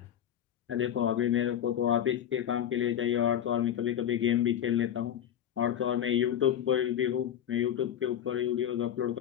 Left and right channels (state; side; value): quieter; right; 10.1 dB